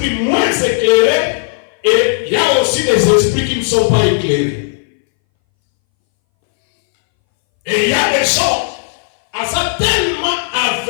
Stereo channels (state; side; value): silent; right; 64 dB below the other